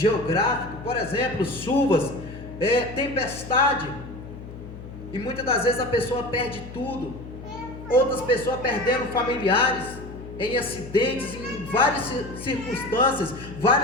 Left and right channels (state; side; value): noise; left; hum, 13 dB below the sound